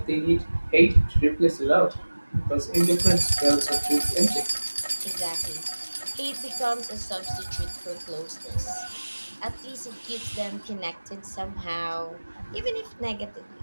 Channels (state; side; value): inverted; both; correlation -1.00